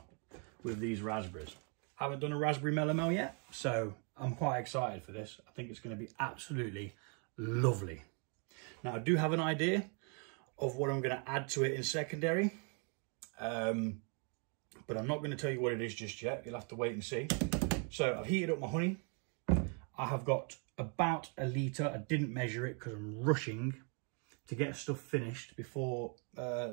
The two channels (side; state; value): left; quieter; 38.1 dB